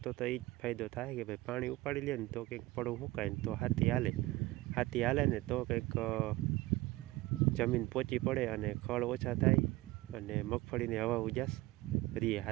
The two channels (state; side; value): quieter; left; 18.9 dB